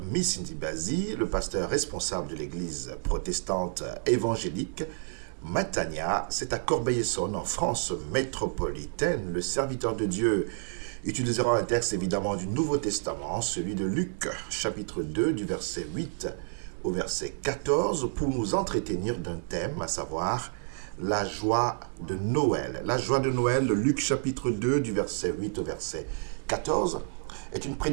Missindibazi, le pasteur responsable de l'église protestante évangélique Matania. C'est à Corbeil-Essonnes, en France métropolitaine. Le serviteur de Dieu utilisera un texte évidemment du Nouveau Testament, celui de Luc, chapitre 2, du verset 8 au verset 14, pour nous entretenir d'un thème, à savoir la joie de Noël. La joie de Noël, Luc, chapitre 2, du verset 8 au verset 14, est une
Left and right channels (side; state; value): left; silent; 58 dB below the other